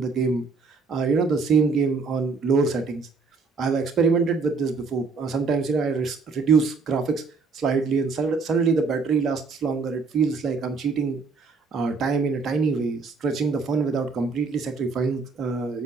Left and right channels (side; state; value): left; quieter; 4.5 dB